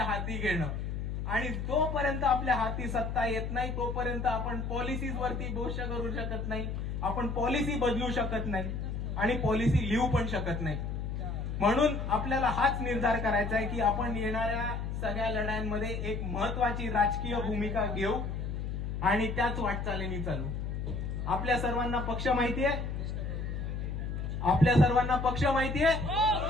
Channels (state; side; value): noise; left; hum, 3 dB below the sound